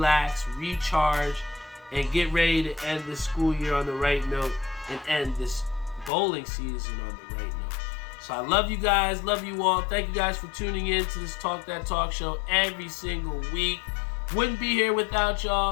recharge, and get ready to end this school year on the right note and end this bowling season on the right note. So I love you guys, love you all. Thank you guys for tuning in to this Talk That Talk show every single week. Wouldn't be here without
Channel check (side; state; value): right; drops out; at 6.1 s